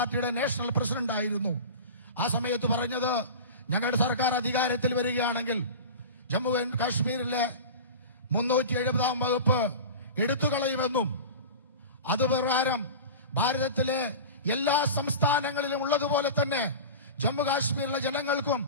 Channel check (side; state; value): both; inverted; correlation -0.32